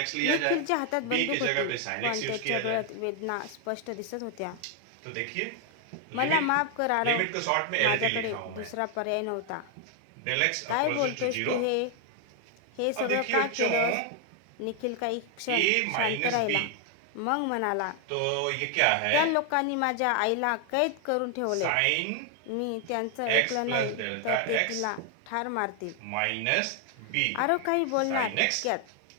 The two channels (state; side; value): different; both; correlation 0.00